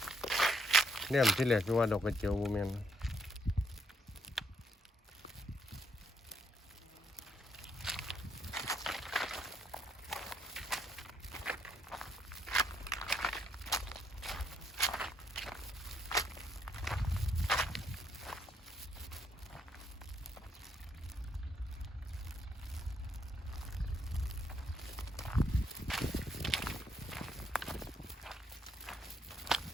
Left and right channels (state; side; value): normal; both; correlation 0.72